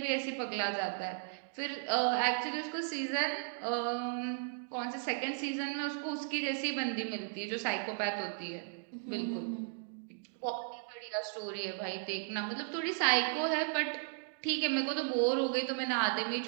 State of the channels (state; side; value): silent; left; digital silence